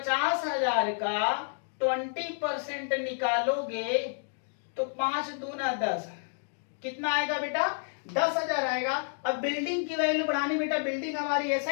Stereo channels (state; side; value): silent; right; digital silence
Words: का 20% निकालोगे तो 5 दूना 10, कितना आएगा बेटा? 10,000 आएगा। अब बिल्डिंग की वैल्यू बढ़ानी बेटा, बिल्डिंग हमारी